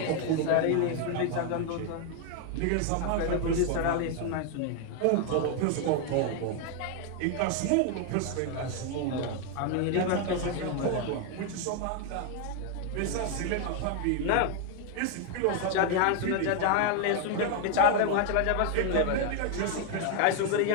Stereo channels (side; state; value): both; different; correlation 0.00